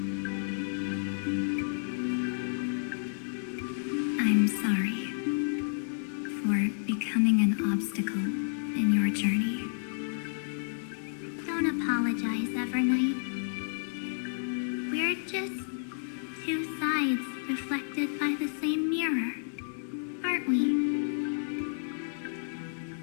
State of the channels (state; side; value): silent; right; digital silence